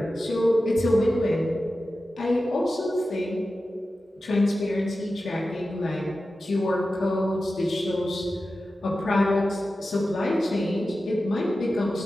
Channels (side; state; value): both; normal; correlation 0.93